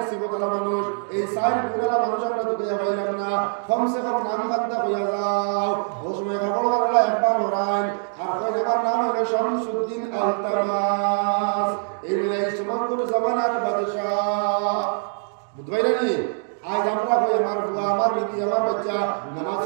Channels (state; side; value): silent; left; digital silence